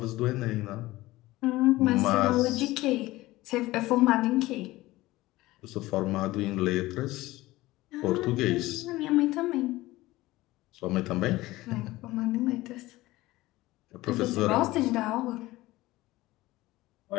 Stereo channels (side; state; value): right; quieter; 18.3 dB